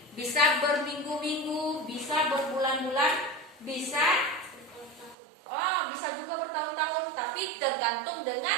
bisa berminggu-minggu, bisa berbulan-bulan, bisa juga bertahun-tahun. Tapi tergantung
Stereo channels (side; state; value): left; drops out; at 5.2 s